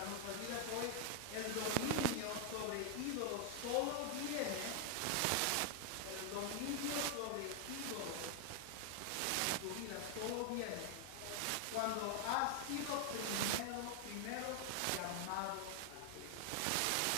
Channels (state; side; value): different; both; correlation 0.00